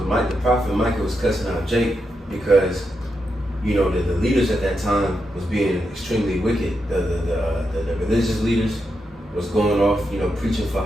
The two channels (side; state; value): both; normal; correlation 0.85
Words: prophet Micah was cussing out Jake because, the leaders at that time was being extremely wicked. The religious leaders was going off, preaching for